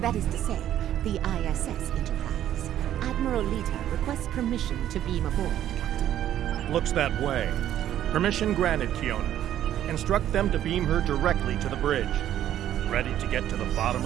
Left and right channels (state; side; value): quieter; left; 11.6 dB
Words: That is to say, the ISS Enterprise. Admiral Lita requests permission to beam aboard, Captain. Looks that way. Permission granted, Kiona. Instruct them to beam her directly to the bridge. Ready to get to the bottom